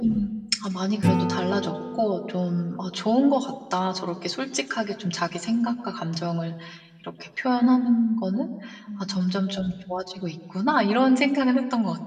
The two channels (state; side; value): identical; both; correlation 1.00